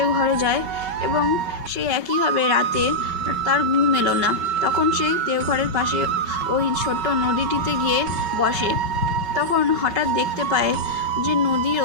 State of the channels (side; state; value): left; late; 5.3 ms